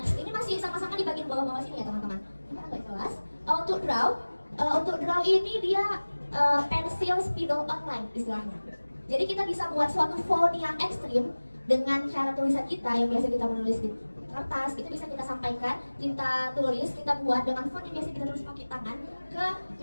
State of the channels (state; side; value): inverted; both; correlation -1.00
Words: Ini masih sama-sama di bagian bawah-bawah sini ya teman-teman. Ini agak jelas. Untuk draw ini dia pensil spidol online istilahnya. Jadi kita bisa buat suatu font yang ekstrim dengan cara tulisan kita yang biasa kita menulis di kertas. Itu bisa kita sampaikan, kita tulis, kita buat dengan font yang biasa kita tulis pakai tangan ke